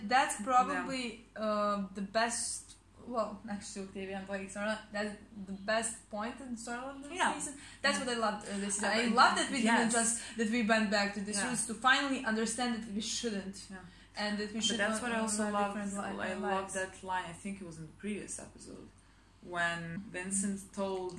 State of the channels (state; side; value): identical; both; correlation 1.00